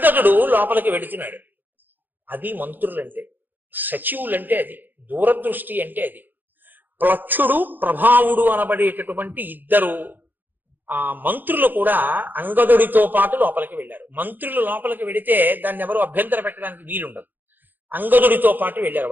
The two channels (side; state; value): left; late; 0.088 ms